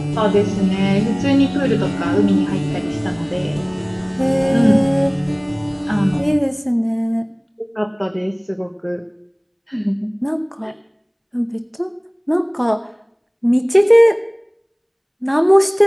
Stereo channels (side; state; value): both; identical; correlation 1.00